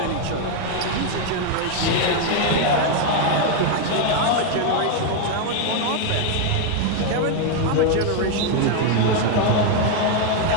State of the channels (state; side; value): different; both; correlation 0.01